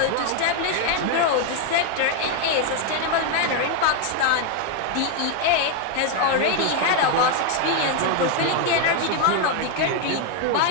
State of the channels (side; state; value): both; different; correlation 0.01